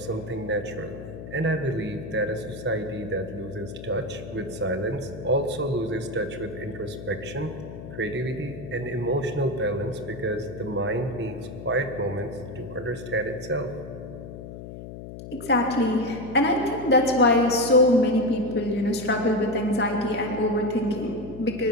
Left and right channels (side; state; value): left; noise; hum, 11 dB below the sound